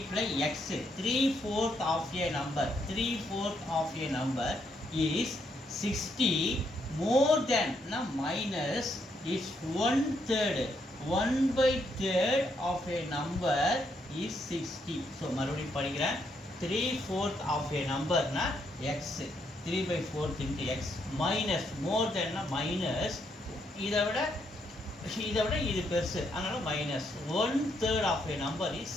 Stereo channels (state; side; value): normal; both; correlation 0.76